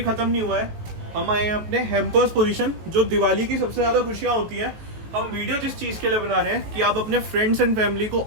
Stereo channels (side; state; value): left; late; 19 ms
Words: ख़त्म नहीं हुआ है। हम आए हैं अपने हैम्पर्स पोजीशन, जो दिवाली की सबसे ज़्यादा खुशियाँ होती हैं। हम वीडियो जिस चीज़ के लिए बना रहे हैं कि आप अपने फ्रेंड्स एंड फैमिली को